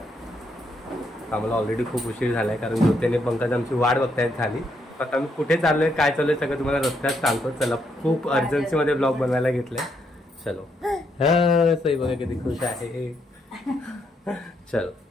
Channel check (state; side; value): normal; both; correlation 0.76